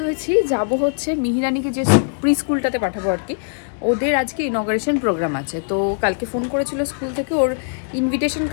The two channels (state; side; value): silent; right; digital silence